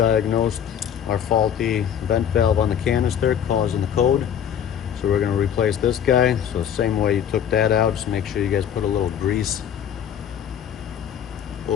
our faulty vent valve on the canister causing the code. So we're going to replace this guy. So same way you took that out, just make sure you guys put a little grease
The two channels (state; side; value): quieter; right; 9.0 dB